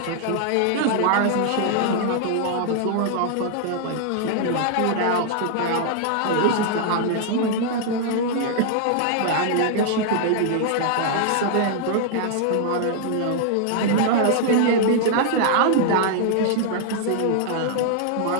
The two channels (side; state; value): both; different; correlation -0.01